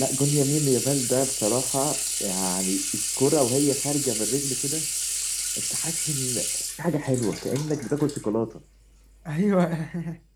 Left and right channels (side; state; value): both; identical; correlation 1.00